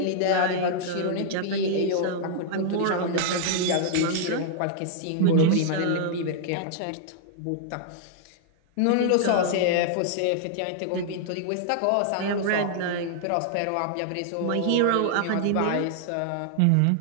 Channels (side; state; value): both; different; correlation -0.01